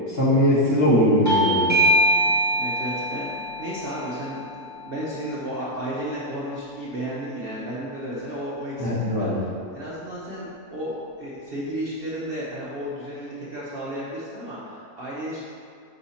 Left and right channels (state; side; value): normal; both; correlation -0.01